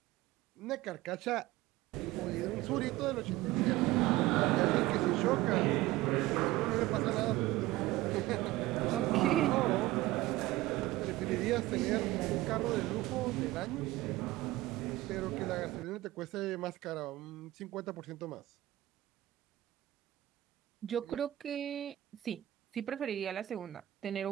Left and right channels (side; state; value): left; quieter; 17.0 dB